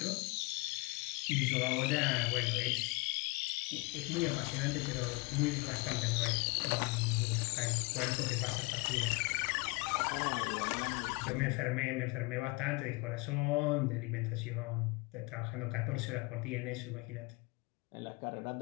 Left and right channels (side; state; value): right; quieter; 26.9 dB